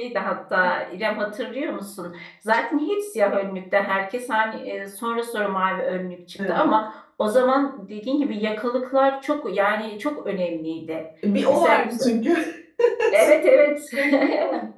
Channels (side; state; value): both; identical; correlation 1.00